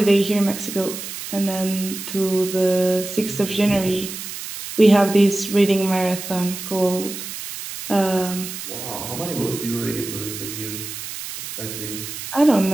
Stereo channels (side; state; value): right; noise; hiss, 9 dB below the sound